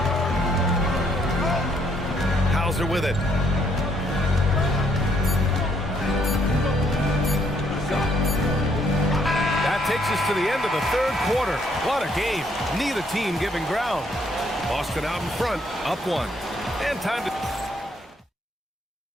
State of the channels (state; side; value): normal; both; correlation 0.69